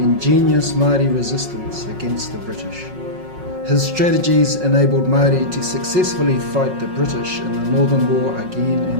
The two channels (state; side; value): late; left; 5.5 ms